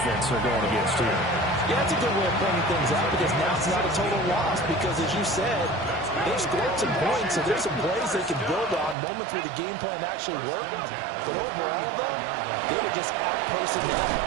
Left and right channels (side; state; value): left; drops out; at 9.0 s